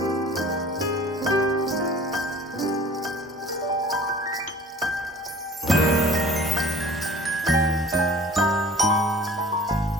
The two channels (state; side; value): normal; both; correlation 0.47